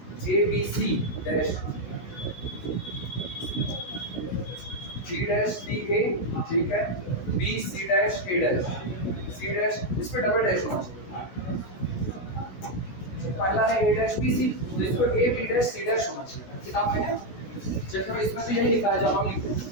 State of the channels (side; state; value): right; late; 16 ms